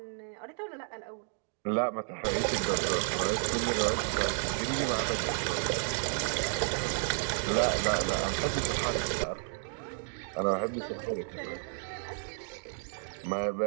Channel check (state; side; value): silent; left; 57 dB below the other